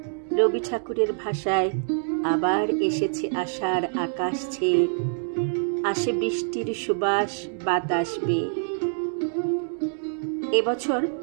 রবি ঠাকুরের ভাষায় আবার এসেছে আষাঢ় আকাশ ছেয়ে, আসে বৃষ্টির সুবাস বাতাস বেয়ে। এবছর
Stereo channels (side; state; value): left; silent; 61 dB below the other